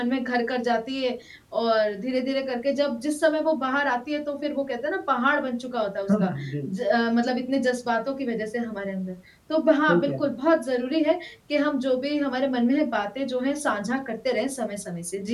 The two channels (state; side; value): identical; both; correlation 1.00